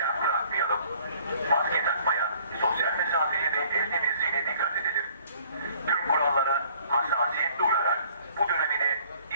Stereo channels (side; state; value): both; inverted; correlation -0.57